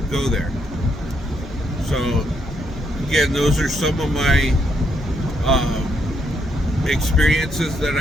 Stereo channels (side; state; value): both; normal; correlation 0.75